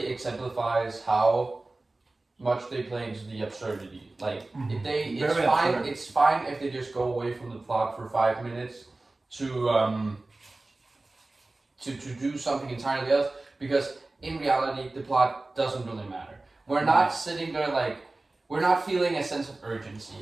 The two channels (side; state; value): left; quieter; 3.1 dB